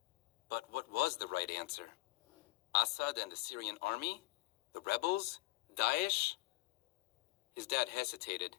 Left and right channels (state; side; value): quieter; right; 21.1 dB